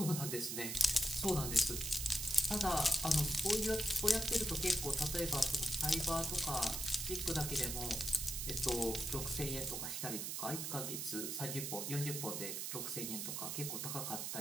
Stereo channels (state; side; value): noise; right; hiss, 3 dB below the sound